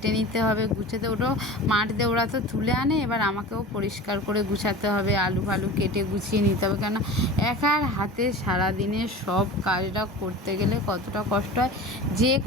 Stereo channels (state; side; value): normal; both; correlation 0.35